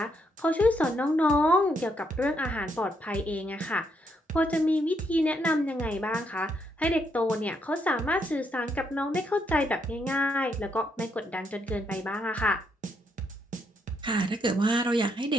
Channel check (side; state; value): both; normal; correlation 0.76